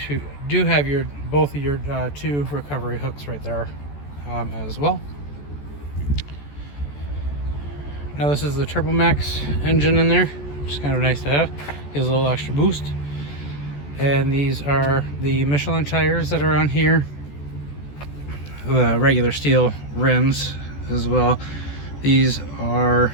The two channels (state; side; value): late; right; 14 ms